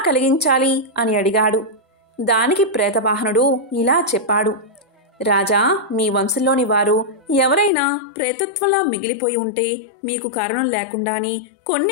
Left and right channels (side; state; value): right; drops out; at 7.7 s